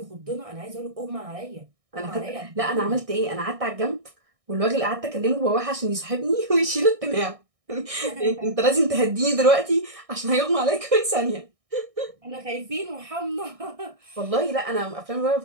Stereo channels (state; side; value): late; left; 1.6 ms